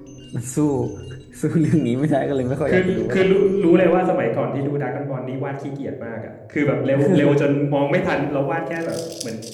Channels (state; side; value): identical; both; correlation 1.00